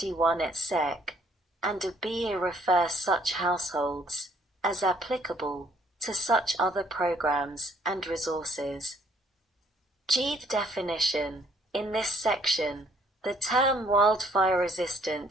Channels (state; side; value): normal; both; correlation 0.64